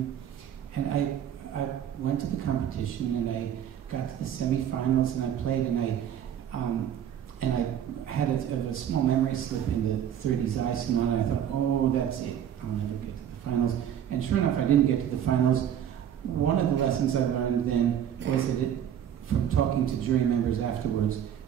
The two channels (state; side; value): quieter; left; 9.7 dB